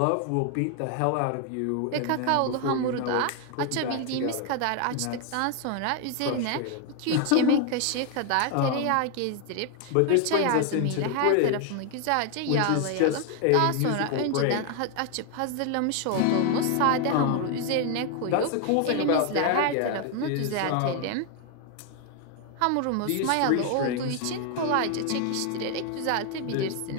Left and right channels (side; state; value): both; different; correlation 0.01